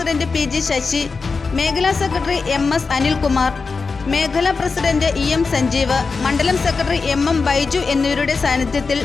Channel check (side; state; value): right; quieter; 4.5 dB